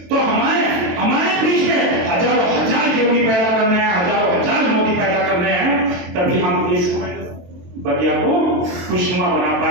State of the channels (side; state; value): left; late; 22 ms